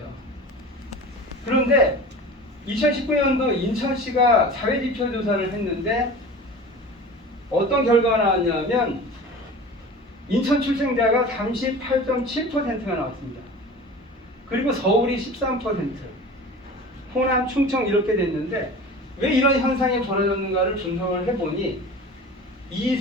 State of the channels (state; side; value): normal; both; correlation 0.37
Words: 그런데 2019년도 인천시가 사회지표 조사를 했는데 어떤 결과가 나왔냐면 인천 출생자가 38.7%가 나왔습니다. 그리고 서울이 13%, 호남, 충청 이렇게 됐는데 왜 이런 현상이 벌어졌는가를 분석을 해보니